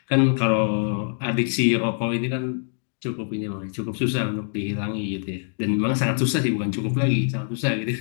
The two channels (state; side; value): silent; right; digital silence